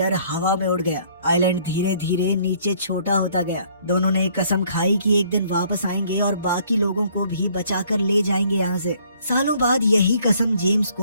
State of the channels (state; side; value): inverted; both; correlation -0.61